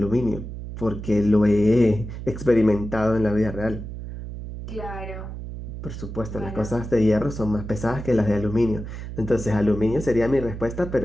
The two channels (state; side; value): noise; right; hum, 9 dB below the sound